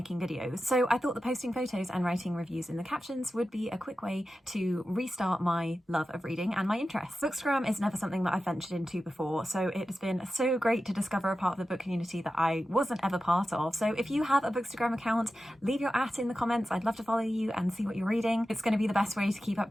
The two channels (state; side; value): normal; both; correlation 0.93